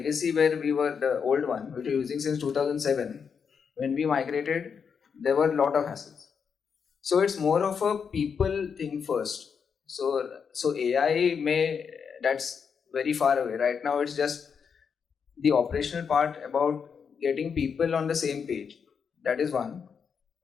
where we were the old one, which we were using since 2007. When we migrated, there were a lot of hassles. So it's more of a people thing first. So AI that's very far away. Right now it's just the operational part about getting people on the same page. That is one.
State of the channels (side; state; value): right; quieter; 6.5 dB